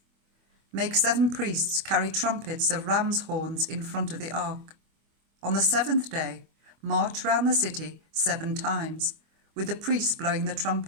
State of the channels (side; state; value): left; late; 25 ms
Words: Make 7 priests carry trumpets of ram's horns in front of the ark. On the 7th day, march round the city 7 times, with the priests blowing the